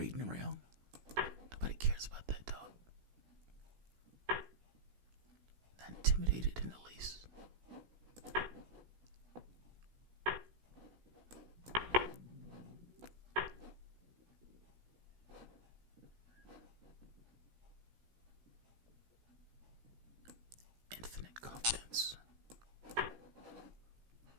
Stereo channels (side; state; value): left; late; 16 ms